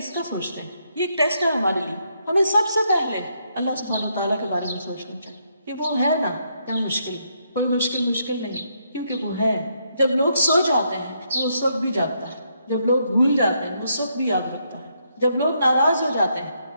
کا سوچتے ہیں؟ یہ ایک ٹیسٹ ہے ہمارے لیے. ہمیں سب سے پہلے اللہ سبحانہ وتعالیٰ کے بارے میں سوچنا چاہیے کہ وہ ہے نا. کیا مشکل؟ کوئی مشکل نہیں، کیونکہ وہ ہے. جب لوگ سو جاتے ہیں تو اس وقت بھی جاگتا ہے. جب لوگ بھول جاتے ہیں اس وقت بھی یاد رکھتا ہے. جب لوگ ناراض ہو جاتے ہیں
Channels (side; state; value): both; inverted; correlation -0.76